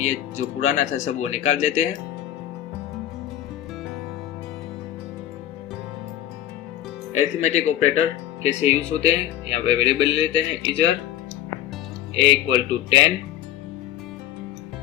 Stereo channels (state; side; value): quieter; right; 12.2 dB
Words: जो पुराना था सब वो निकाल देते हैं। अरिथमेटिक ऑपरेटर कैसे यूज होते हैं, यहाँ पे वेरिएबल लेते हैं इजर a equal to 10,